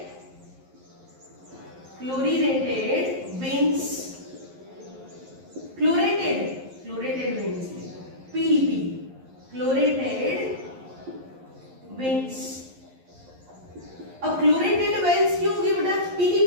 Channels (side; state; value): left; late; 11 ms